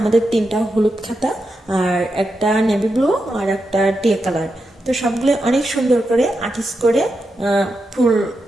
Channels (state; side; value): normal; both; correlation 0.87